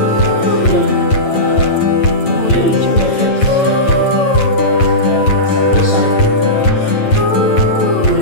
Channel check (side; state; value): right; late; 9.0 ms